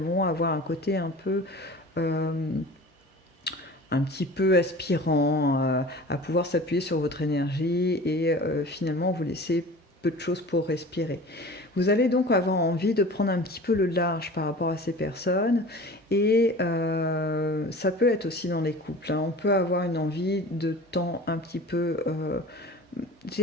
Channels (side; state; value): both; normal; correlation 0.40